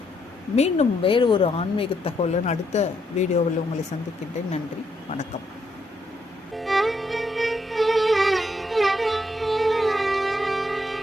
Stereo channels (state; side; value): normal; both; correlation 0.76